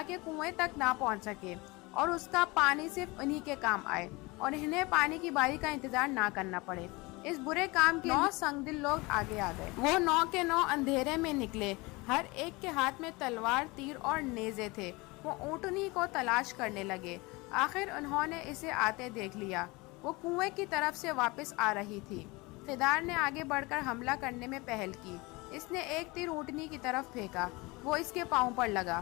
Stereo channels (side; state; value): right; quieter; 24.3 dB